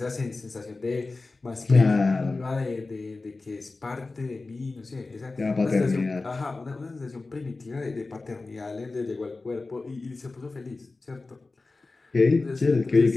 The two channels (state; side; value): quieter; right; 3.6 dB